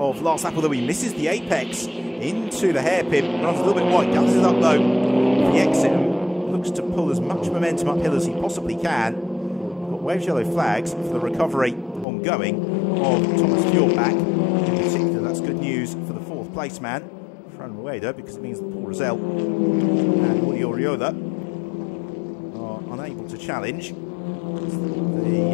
last lap, although he misses the apex into the hairpin, runs a little bit wide, guns it up low for the exit, and looks to pull as much momentum uphill as he possibly can. We've got waves yellow flags for the recovery ongoing of Thomas Fjordbach. In particular, that's good news for the fourth place man, Fran Raider, because it means that Paul Rosell and Jordi Oriola are unable to challenge.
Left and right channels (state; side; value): drops out; right; at 12.1 s